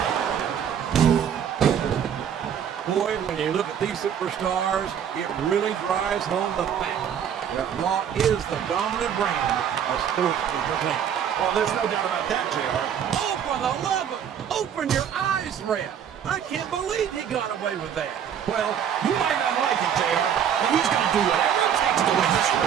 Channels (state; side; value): quieter; left; 8.7 dB